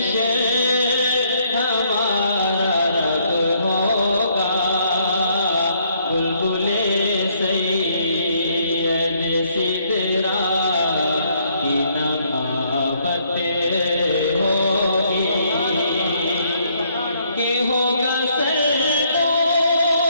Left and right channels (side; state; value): both; inverted; correlation -0.69